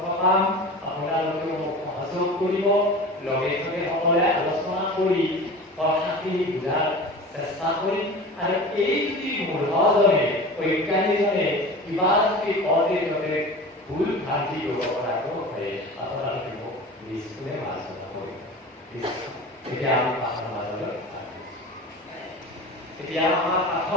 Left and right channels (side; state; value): both; normal; correlation 0.35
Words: পাম। আপোনালোকে মোক সহযোগ কৰিব, লগে লগে সকলোৱে আলোচনা কৰি কথাখিনি বুজাৰ চেষ্টা কৰিম। আৰু এই যদি মূঢ়জনে, অজ্ঞানীজনে কিবা যদি কওঁতে ততে ভুল ভ্ৰান্তি কৰিব পৰাটো হয়, আপোনালোকে মোক নিশ্চয় আলোচনা কৰিব। এতিয়া আমি পাঠৰ মাজলৈ এতিয়া আমাৰ পাঠত